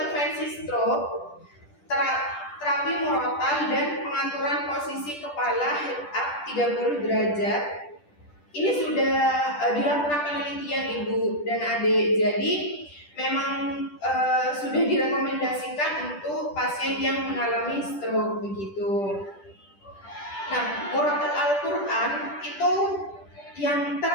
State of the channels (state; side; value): late; right; 10 ms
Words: stroke, terapi murotal dan pengaturan posisi kepala head up 30 derajat ini sudah dilakukan penelitian Ibu dan Adik. Jadi memang sudah direkomendasikan untuk pasien yang mengalami stroke begitu. Nah, murotal Al-Quran itu yang